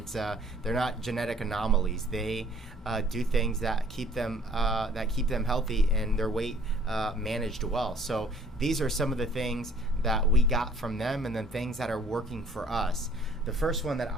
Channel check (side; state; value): both; normal; correlation 0.56